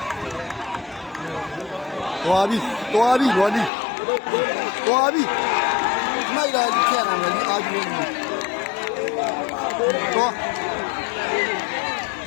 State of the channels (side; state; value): right; drops out; at 3.7 s